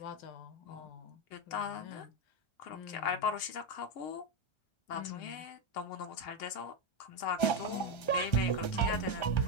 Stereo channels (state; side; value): late; right; 1.3 ms